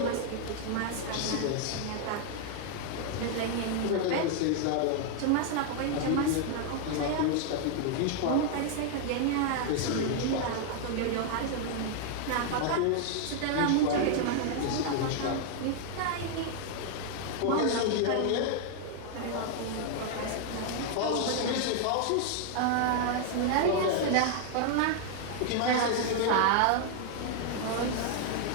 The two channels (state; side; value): different; both; correlation 0.00